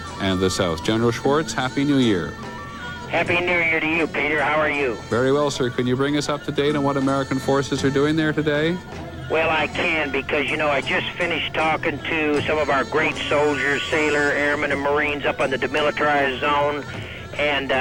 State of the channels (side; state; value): left; noise; hum, 26 dB below the sound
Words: and the south. General Schwartz, Happy New Year. Happy New Year to you, Peter. How are you? Very well, sir. Can you bring us up to date on what American forces are doing there today? Well, I can because, I just finished talking to some of our great soldiers, sailor, airmen, and Marines up on the demilitarized zone, and